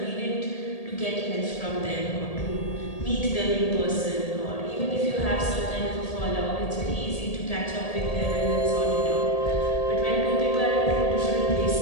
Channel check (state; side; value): late; right; 1.8 ms